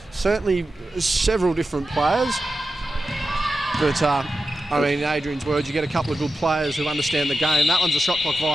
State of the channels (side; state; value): both; normal; correlation 0.91